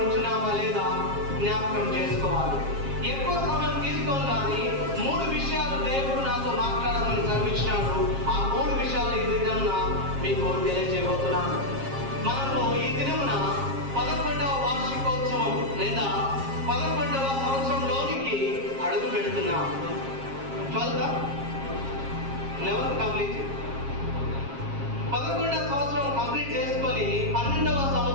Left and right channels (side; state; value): left; late; 7.4 ms